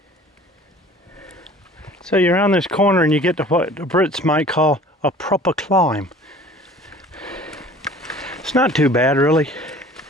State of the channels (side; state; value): both; normal; correlation 0.47